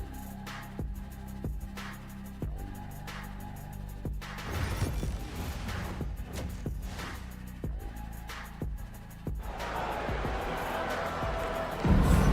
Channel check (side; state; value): both; identical; correlation 1.00